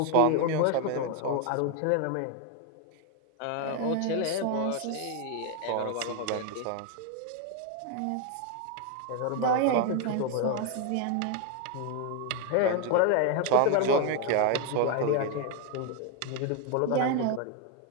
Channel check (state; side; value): different; both; correlation 0.01